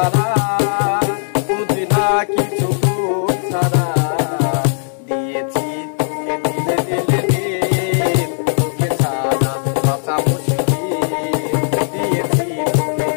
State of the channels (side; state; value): right; silent; 68 dB below the other